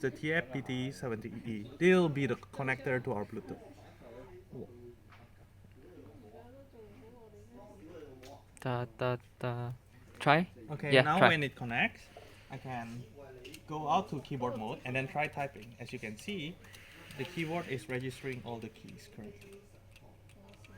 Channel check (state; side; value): identical; both; correlation 1.00